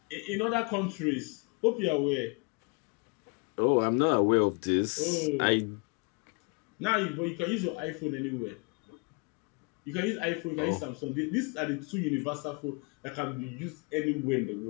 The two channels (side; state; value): right; quieter; 31.9 dB